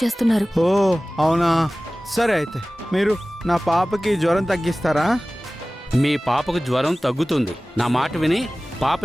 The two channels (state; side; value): normal; both; correlation 0.98